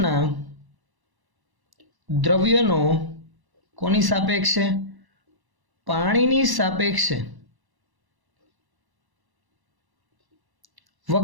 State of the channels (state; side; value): late; left; 1.0 ms